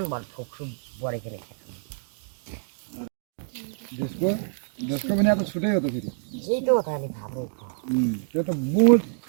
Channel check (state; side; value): silent; left; digital silence